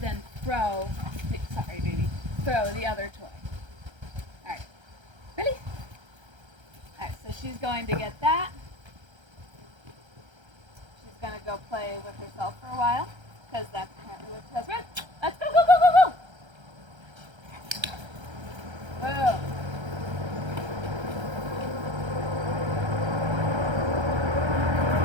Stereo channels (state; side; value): late; left; 1.3 ms